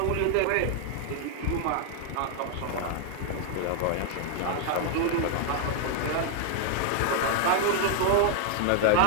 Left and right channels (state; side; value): different; both; correlation 0.00